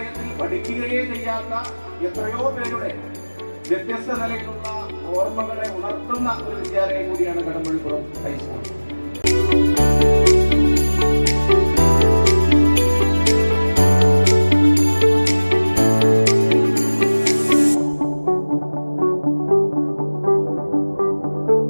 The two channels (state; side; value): inverted; both; correlation -1.00